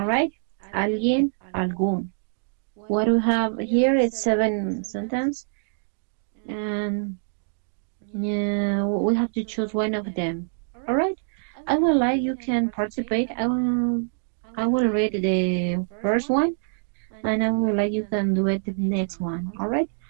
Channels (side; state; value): left; silent; digital silence